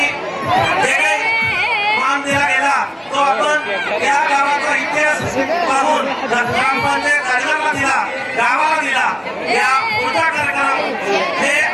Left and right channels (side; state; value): both; identical; correlation 1.00